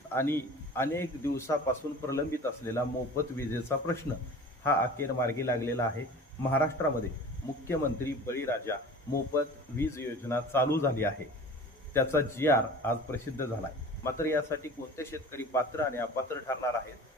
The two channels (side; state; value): both; normal; correlation 0.40